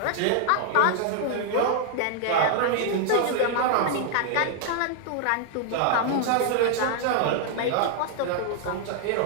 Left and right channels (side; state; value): both; different; correlation 0.00